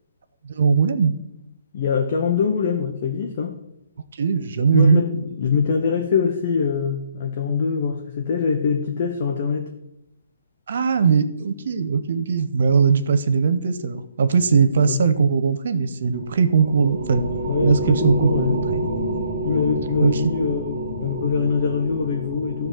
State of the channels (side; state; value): both; inverted; correlation -0.69